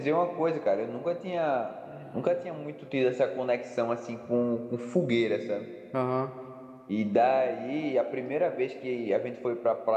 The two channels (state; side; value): identical; both; correlation 1.00